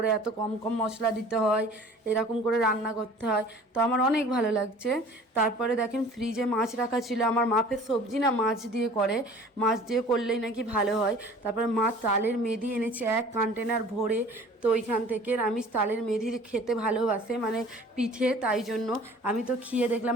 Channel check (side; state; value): both; normal; correlation 0.47